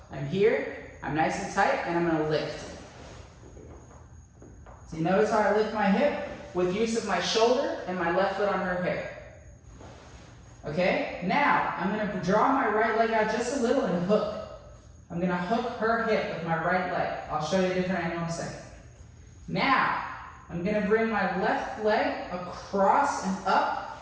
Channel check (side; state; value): both; identical; correlation 1.00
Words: I'm here, I'm nice and tight, and I'm going to lift. So you notice how I lift my hip with use of my shoulder and my left foot on her hip. Okay? Now, I'm going to draw my right leg out just a little and hook. I'm going to hook her hip with my right leg. I'll show you a different angle in a second. Now, I'm going to bring my left leg across and